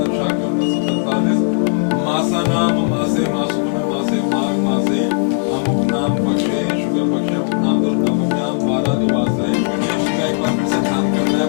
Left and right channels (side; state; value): right; silent; digital silence